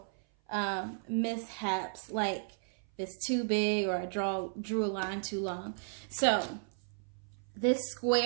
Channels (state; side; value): silent; left; 55 dB below the other